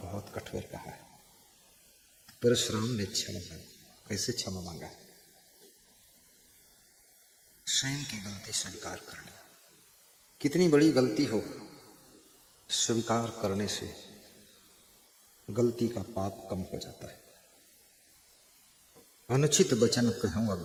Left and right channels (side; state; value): both; identical; correlation 1.00